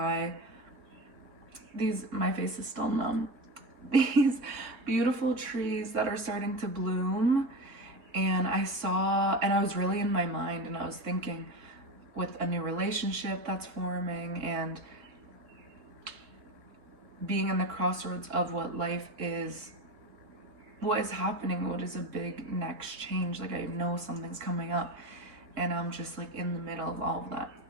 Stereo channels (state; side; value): late; left; 3.7 ms